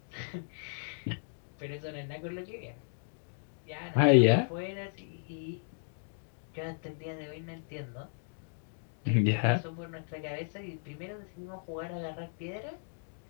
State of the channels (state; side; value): silent; right; digital silence